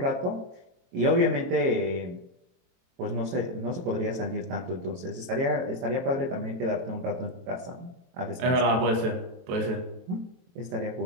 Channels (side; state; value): left; late; 23 ms